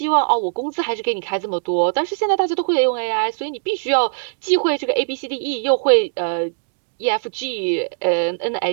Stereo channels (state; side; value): silent; left; digital silence